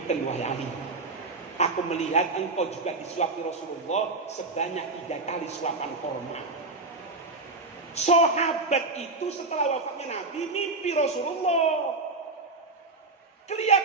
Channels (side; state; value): left; quieter; 3.5 dB